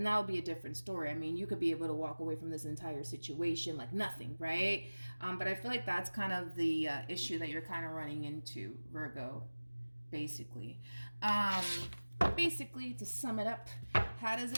that would be a different story. I mean, you could be able to walk away from this entire situation like nothing, right? But I feel like that's kind of the issue that you're kind of running into, Virgo, basically. Basically, to sum it up, how does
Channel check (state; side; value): inverted; both; correlation -1.00